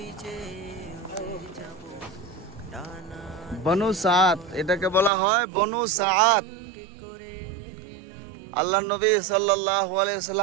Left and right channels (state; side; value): drops out; left; at 5.1 s